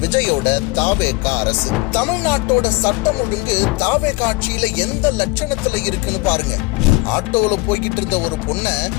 விஜயோட தாவேகா அரசு. தமிழ்நாட்டோட சட்டம் ஒழுங்கு தாவேகா ஆட்சியில எந்த லட்சணத்துல இருக்குன்னு பாருங்க. ஆட்டோல போய்கிட்டு இருந்த ஒரு பொண்ணை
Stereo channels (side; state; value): right; quieter; 23.4 dB